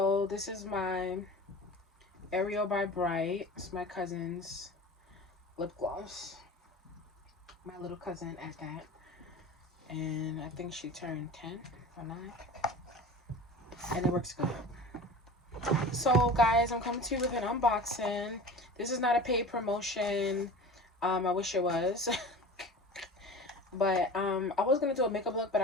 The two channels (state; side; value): normal; both; correlation 0.36